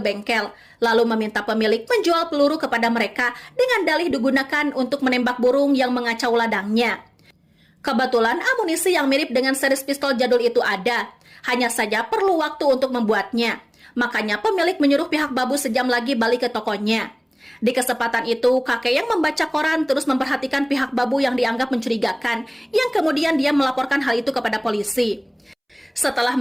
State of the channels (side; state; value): both; identical; correlation 1.00